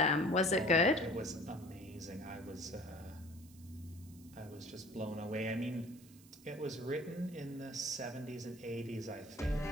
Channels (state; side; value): noise; right; hiss, 23 dB below the sound